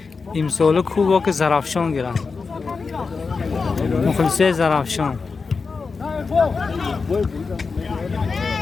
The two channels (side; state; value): right; quieter; 4.7 dB